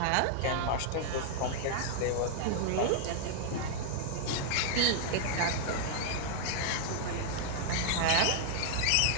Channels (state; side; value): different; both; correlation -0.01